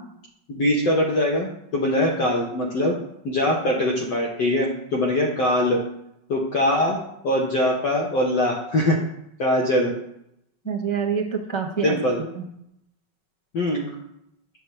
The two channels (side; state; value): right; late; 5.4 ms